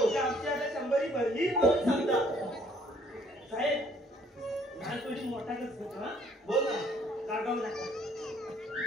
आमची आता 100 भरली म्हणून सांगता. साहेब लहान थोडी मोठा करतो ना. बोल ना. कागाव नका.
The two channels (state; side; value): normal; both; correlation 0.62